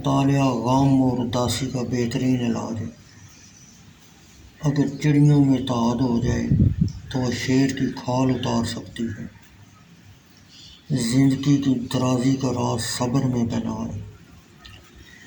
غم اور اداسی کا بہترین علاج ہے۔ اگر چڑیوں میں اتحاد ہو جائے تو وہ شیر کی کھال اتار سکتی ہے۔ زندگی کی درازی کا راز صبر میں بنا ہے۔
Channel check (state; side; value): identical; both; correlation 1.00